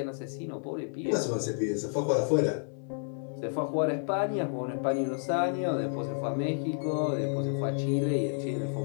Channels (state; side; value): silent; right; 57 dB below the other